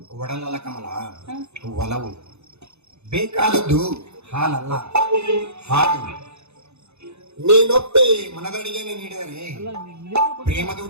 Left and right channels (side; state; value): left; late; 0.81 ms